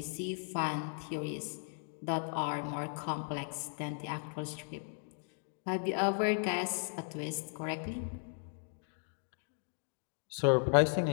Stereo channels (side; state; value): right; silent; 53 dB below the other